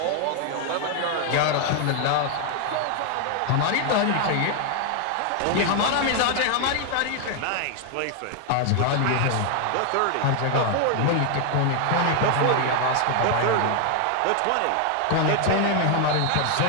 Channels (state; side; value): different; both; correlation 0.00